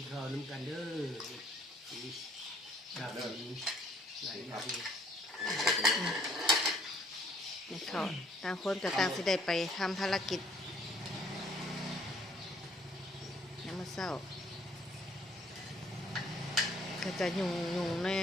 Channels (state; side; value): normal; both; correlation 0.61